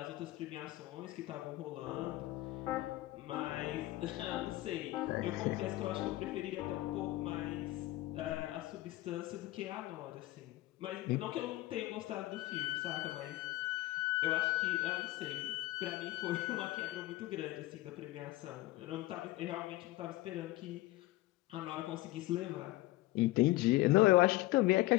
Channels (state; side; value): quieter; right; 18.3 dB